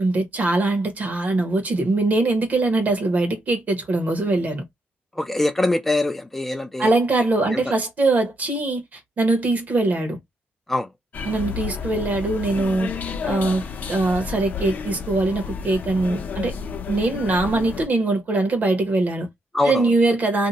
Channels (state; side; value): normal; both; correlation 0.78